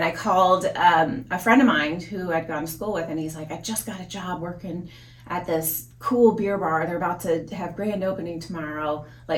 I called a friend of mine who I'd gone to school with, and he's like, I just got a job working at this cool beer bar. They're about to have grand opening tomorrow.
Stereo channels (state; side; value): identical; both; correlation 1.00